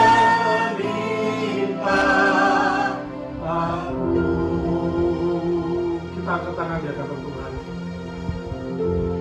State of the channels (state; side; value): identical; both; correlation 1.00